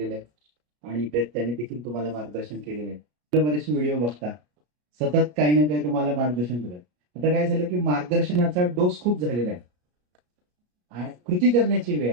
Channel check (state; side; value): late; left; 33 ms